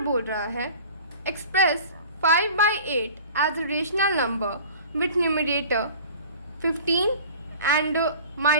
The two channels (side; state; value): both; inverted; correlation -0.42